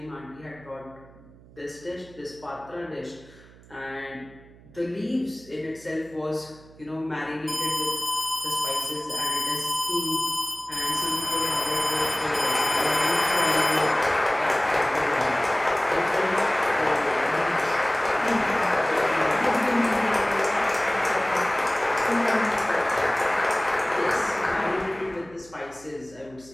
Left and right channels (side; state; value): right; noise; hum, 23 dB below the sound